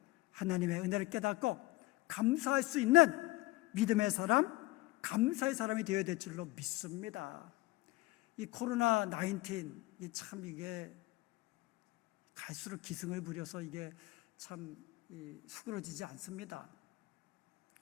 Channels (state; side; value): quieter; right; 19.9 dB